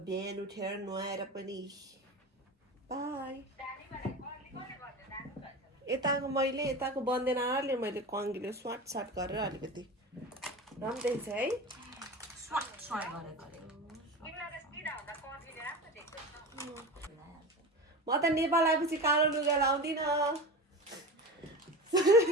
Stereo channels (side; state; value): both; normal; correlation 0.29